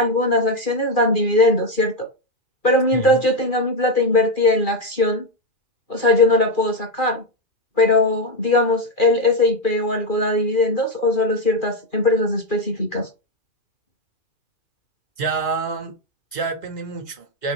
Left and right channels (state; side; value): late; right; 2.4 ms